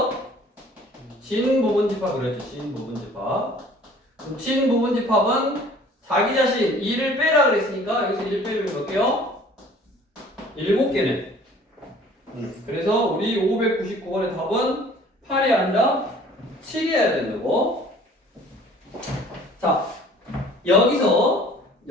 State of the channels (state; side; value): normal; both; correlation 0.51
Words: 진부분집합 그랬죠. 진부분집합. 그럼 진부분집합은 자기 자신 2를 빼라 그랬으니까 여기서 1 빼면 몇 개요? 7개네. 그래서 우리 599번의 답은 8이 아니라 7이어야 된다고. 자, 여기서